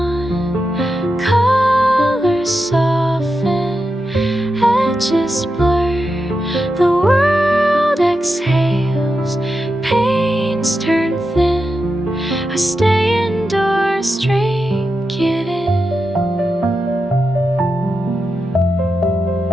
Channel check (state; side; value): normal; both; correlation 0.88